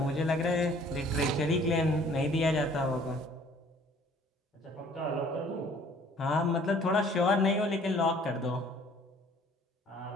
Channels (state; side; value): normal; both; correlation 0.55